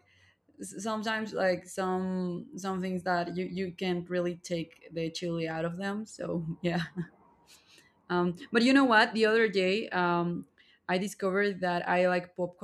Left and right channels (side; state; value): both; identical; correlation 1.00